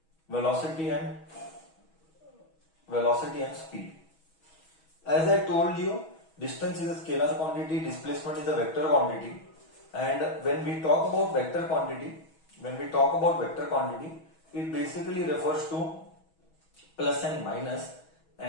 velocity and speed. As I told you, distance is a scalar quantity, displacement is a vector quantity, and when we talk about vector quantity, it basically refers to plus and minus,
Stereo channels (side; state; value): right; late; 6.2 ms